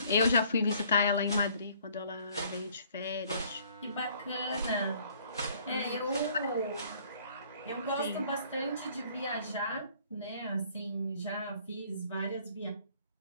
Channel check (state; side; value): inverted; both; correlation -0.59